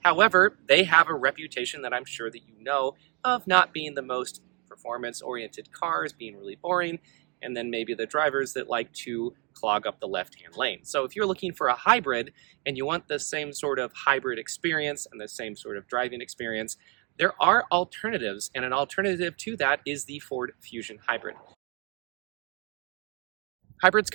they have a reputation that I'm sure that you know of not being the most performance-oriented cars, being really boring, and then maybe the drivers that like to clog up the left-hand lane. So if you're looking for a hybrid and you want the same sort of hybrid experience and the same sort of driving experience, there are alternatives, and an alternative to that is the Ford Fusion Hybrid. Hybrids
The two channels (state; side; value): quieter; left; 32.8 dB